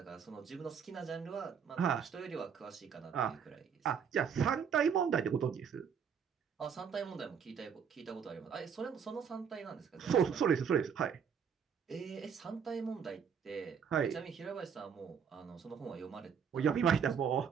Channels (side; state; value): left; quieter; 7.1 dB